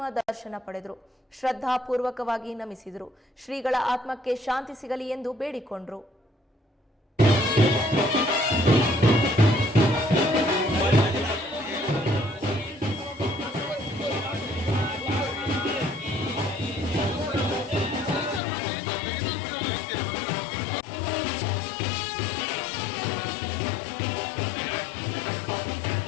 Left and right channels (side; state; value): right; drops out; at 18.4 s